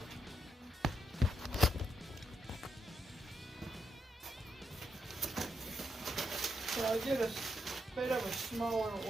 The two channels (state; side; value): normal; both; correlation 0.81